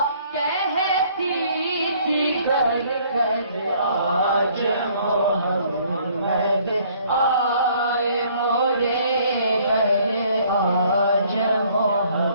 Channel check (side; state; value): both; inverted; correlation -0.60